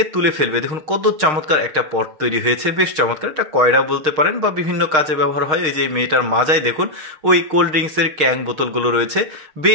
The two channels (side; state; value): left; late; 6.5 ms